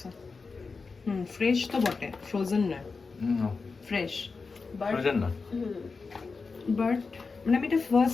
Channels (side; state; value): right; quieter; 4.5 dB